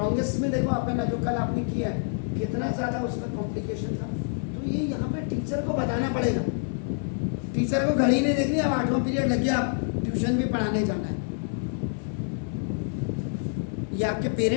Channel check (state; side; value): silent; right; digital silence